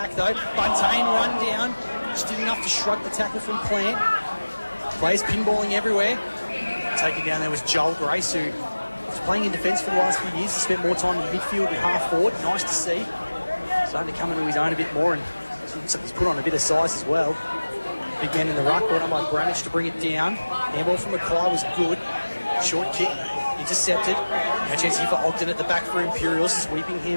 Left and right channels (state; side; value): inverted; both; correlation -1.00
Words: though. Buntain run down. Just did enough to shrug the tackle from Plant. Players pinballing everywhere. Taken down there was Joel Grace, who was playing in defence for the last few years. He spent more time in midfield and half forward. Nice to see. Starting to come into his own a bit more, and he's put on a bit of size as well. Big man in the ruck, brought on by Bramage to bring it down. Handball from Mackay was good. Short kick, intercepted. Now chance here for Ogden at the back for Imperials. Sweeping